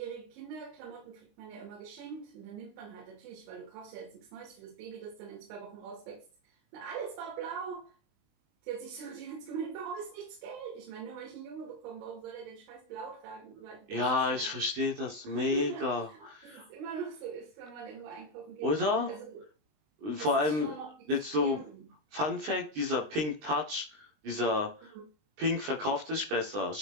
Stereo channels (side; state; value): left; late; 20 ms